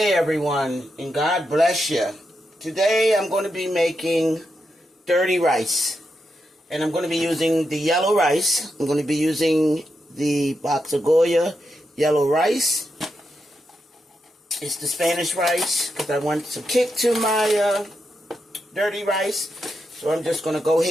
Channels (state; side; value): normal; both; correlation 0.85